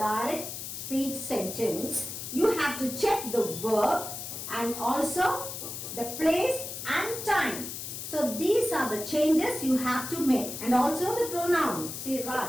speech sentence, you have to check the verb and also the place and time. So these are the changes you have to make, and also the pronoun. See,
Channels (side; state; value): left; noise; hiss, 7 dB below the sound